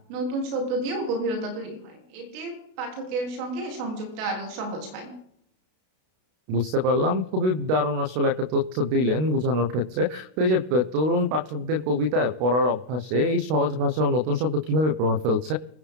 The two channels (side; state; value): left; late; 32 ms